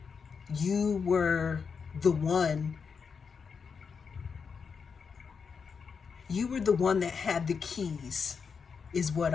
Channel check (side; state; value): right; quieter; 5.9 dB